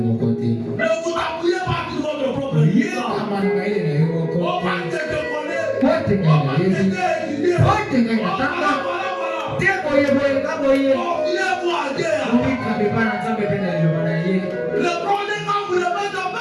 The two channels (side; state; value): both; identical; correlation 1.00